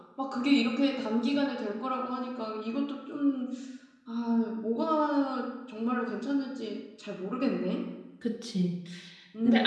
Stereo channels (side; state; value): both; identical; correlation 1.00